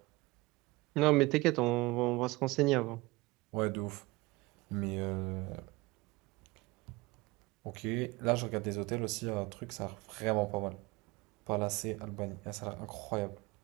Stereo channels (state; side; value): quieter; left; 22.5 dB